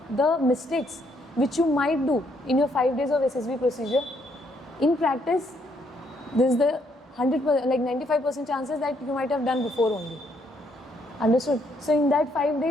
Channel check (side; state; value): both; normal; correlation 0.72